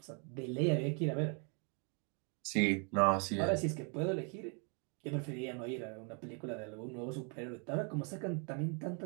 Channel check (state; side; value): quieter; left; 38.4 dB